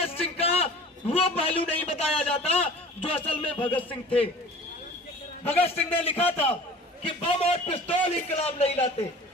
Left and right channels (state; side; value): normal; both; correlation 0.43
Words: सिंह का वो पहलू नहीं बताया जाता जो असल में भगत सिंह थे। भगत सिंह ने लिखा था कि बम और पिस्तौल इंकलाब नहीं लाते,